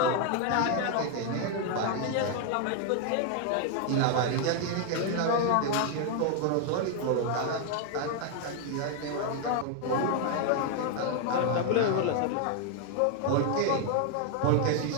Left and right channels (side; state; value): both; different; correlation 0.00